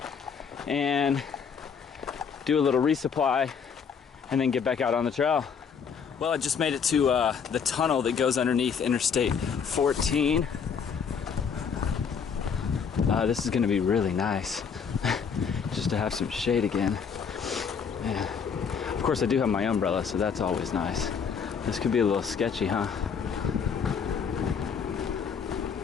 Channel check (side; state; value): right; quieter; 6.5 dB